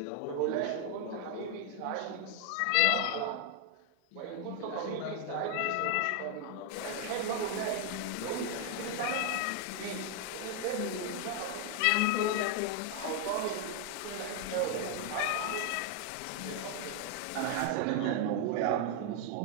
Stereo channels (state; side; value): different; both; correlation 0.00